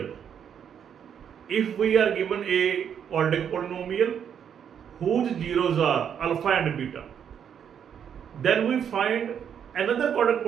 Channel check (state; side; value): quieter; left; 8.3 dB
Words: if we are given a quadratic polynomial whose zeros are alpha and beta, then we find another quadratic